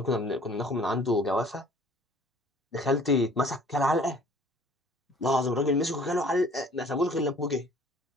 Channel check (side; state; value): both; normal; correlation 0.53